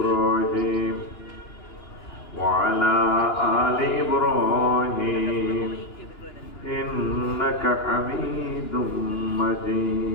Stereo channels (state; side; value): late; right; 2.9 ms